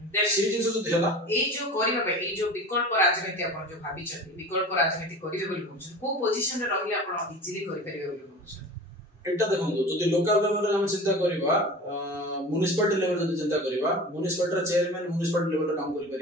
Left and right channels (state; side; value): normal; both; correlation 0.36